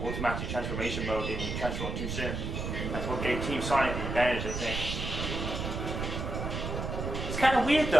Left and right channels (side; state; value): right; noise; rumble, 4 dB below the sound